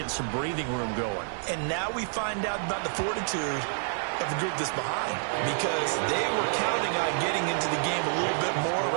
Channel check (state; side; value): silent; left; digital silence